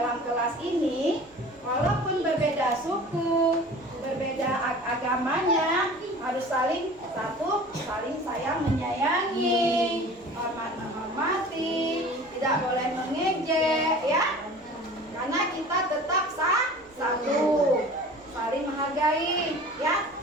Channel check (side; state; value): both; normal; correlation 0.42